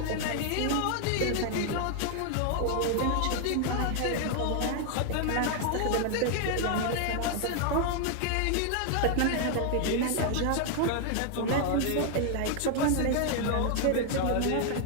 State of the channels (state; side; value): different; both; correlation 0.00